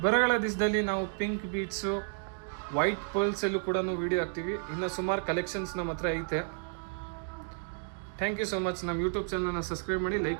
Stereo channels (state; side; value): silent; left; 57 dB below the other